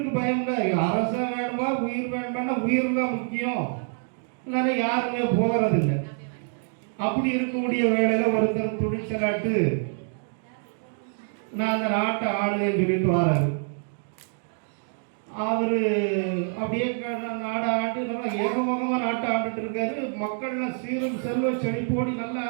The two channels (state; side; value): silent; left; 58 dB below the other